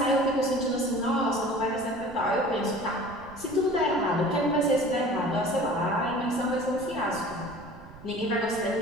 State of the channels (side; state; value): right; noise; rumble, 19 dB below the sound